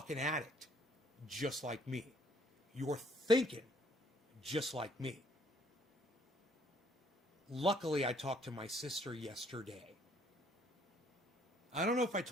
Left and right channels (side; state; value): both; normal; correlation 0.63